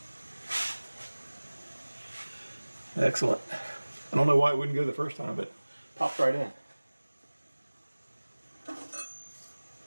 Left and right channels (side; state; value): both; inverted; correlation -1.00